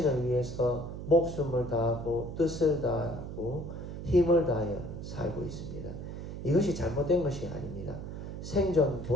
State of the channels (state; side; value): noise; right; hum, 8 dB below the sound